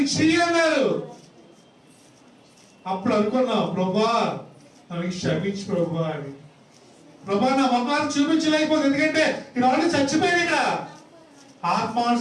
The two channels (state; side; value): identical; both; correlation 1.00